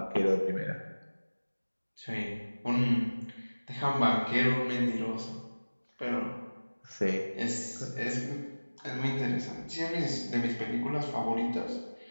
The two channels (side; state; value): both; inverted; correlation -1.00